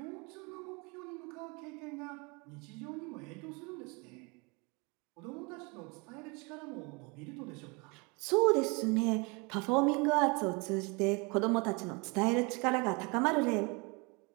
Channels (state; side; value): quieter; left; 29.6 dB